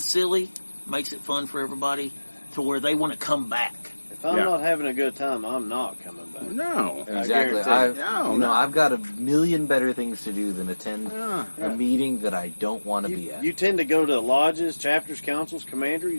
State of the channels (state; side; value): inverted; both; correlation -1.00